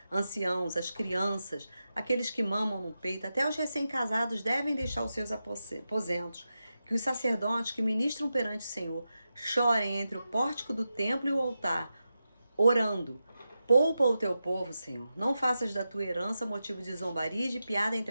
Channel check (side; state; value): both; inverted; correlation -0.90